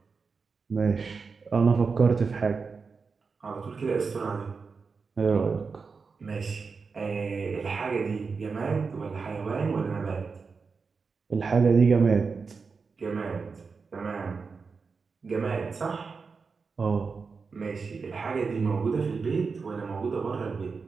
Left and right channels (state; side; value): quieter; left; 4.9 dB